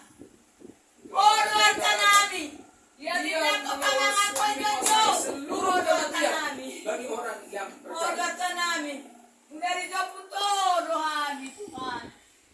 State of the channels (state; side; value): identical; both; correlation 1.00